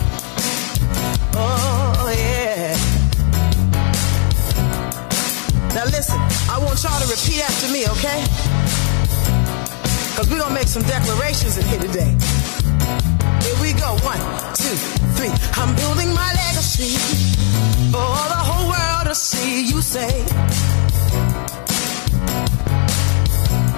Oh yeah. Now listen, I want y'all to repeat after me, okay? Because we're going to make some declarations in here today. Here we go. 1, 2, 3. I'm building my legacy for the whole world to see. You say,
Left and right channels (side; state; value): right; quieter; 31.0 dB